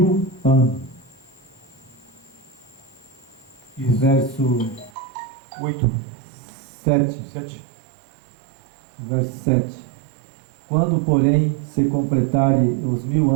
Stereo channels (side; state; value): left; drops out; at 4.9 s